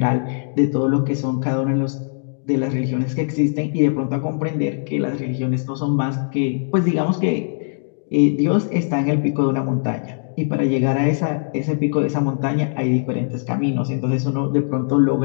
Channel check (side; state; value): right; silent; digital silence